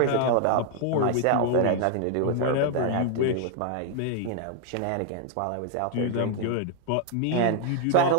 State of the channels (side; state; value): both; different; correlation 0.00